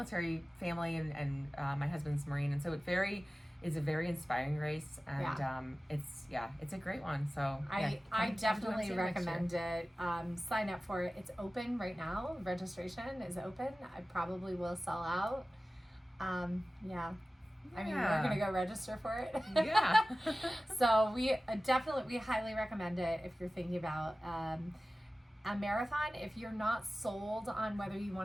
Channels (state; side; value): normal; both; correlation 0.96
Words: family and my husband's Marine. And so it's a very inspiring race. And it's a great one. So I definitely recommend it. Sign up for it. It's open right now. Registration is open. I probably will sell out. I mean, we're going to go register for it. Yeah. So we highly recommend it if you're thinking about a marathon. If you're not sold on whether you